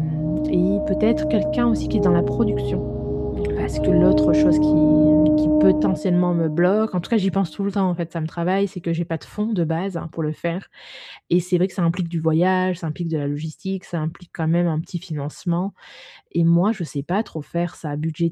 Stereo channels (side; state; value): both; identical; correlation 1.00